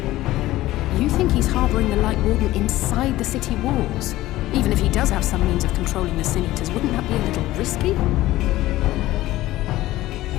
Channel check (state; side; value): quieter; right; 16.3 dB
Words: You think he's harboring bring the Light Warden inside the city walls. Even if he does have some means of controlling the Sin Eaters, wouldn't that be a little risky?